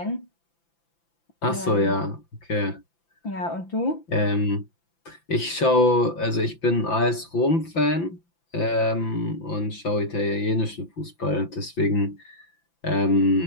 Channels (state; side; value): late; right; 5.9 ms